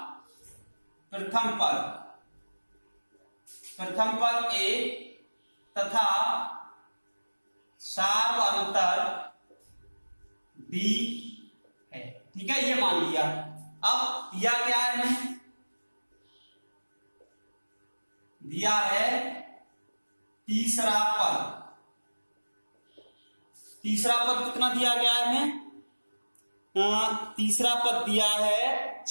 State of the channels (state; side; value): inverted; both; correlation -1.00